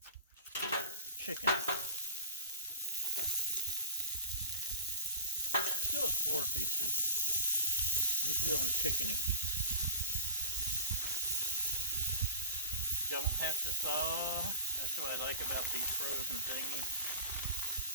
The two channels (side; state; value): both; inverted; correlation -0.35